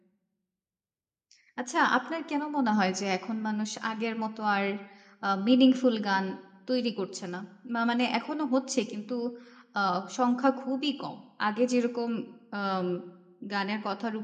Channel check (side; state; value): both; identical; correlation 1.00